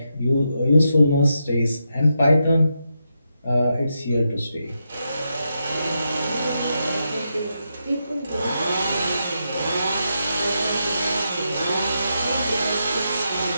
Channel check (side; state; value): both; inverted; correlation -0.84